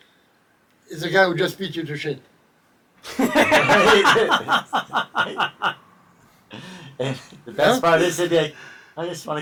is the guy who just beat you to shit. And the best part is, they'd be like, "I just want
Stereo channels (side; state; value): both; identical; correlation 1.00